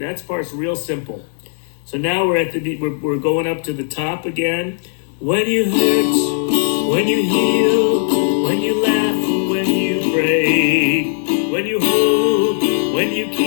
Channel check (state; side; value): silent; right; digital silence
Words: part's real simple. So now we're at the we're going up to the top again. When you hurt, when you heal, when you laugh, when you break, when you hold, when you